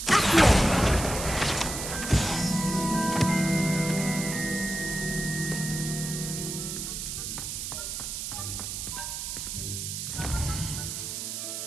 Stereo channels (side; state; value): right; noise; hiss, 5 dB below the sound